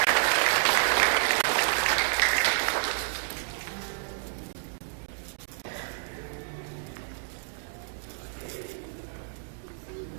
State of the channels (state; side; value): silent; left; digital silence